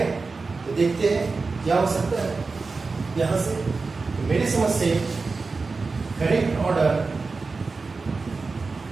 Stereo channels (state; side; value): quieter; left; 4.1 dB